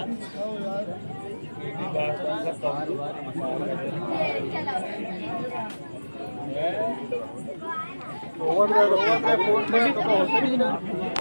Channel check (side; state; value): both; inverted; correlation -1.00